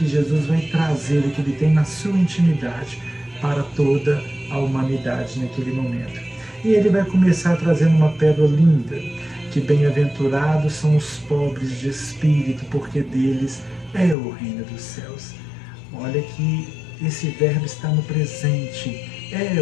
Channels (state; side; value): drops out; right; at 14.2 s